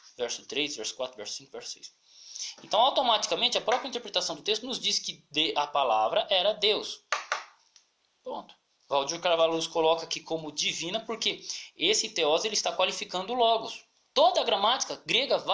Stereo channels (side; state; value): both; identical; correlation 1.00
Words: Verso 3, verso 4, verso 5, verso 6. Então, automaticamente, a própria interpretação do texto nos diz que a palavra era Deus. Ponto. Valdir Carvalho Luz coloca aqui como divina porque esse teós ele está qualificando o logos. Toda a gramática grega